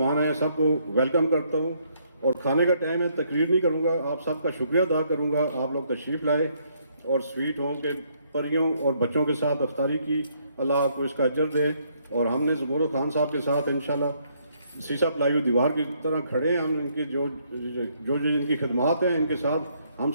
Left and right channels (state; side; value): inverted; both; correlation -0.70